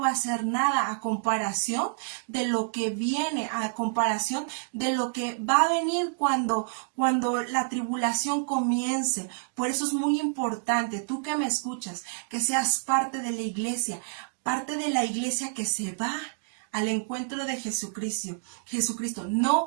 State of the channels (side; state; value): left; silent; digital silence